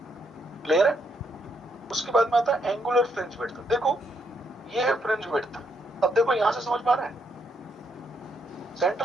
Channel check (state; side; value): normal; both; correlation 0.75